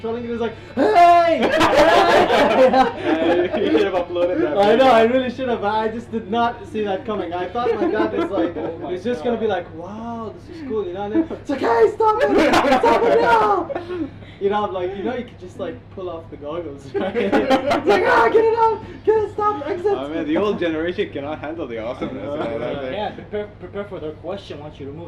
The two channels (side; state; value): both; identical; correlation 1.00